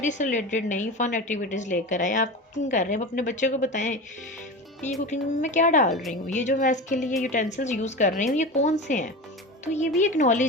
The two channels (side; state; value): both; normal; correlation 0.27